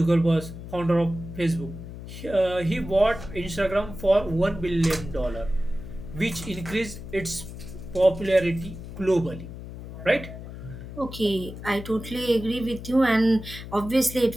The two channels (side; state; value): left; noise; hum, 11 dB below the sound